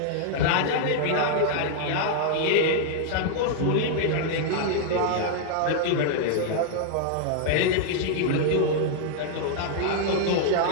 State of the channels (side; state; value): both; different; correlation -0.01